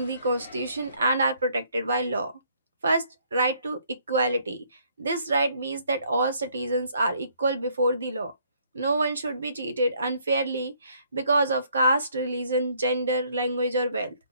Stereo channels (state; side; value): inverted; both; correlation -0.66